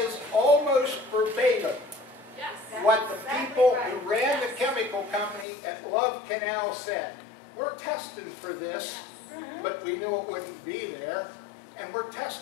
almost verbatim Yes. what the people who ran the chemical company at Love Canal said. We're testing for this, but we knew it wouldn't be there. And we're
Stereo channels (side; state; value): right; drops out; at 5.5 s